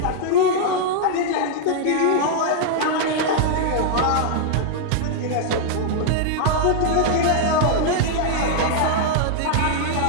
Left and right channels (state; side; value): different; both; correlation -0.01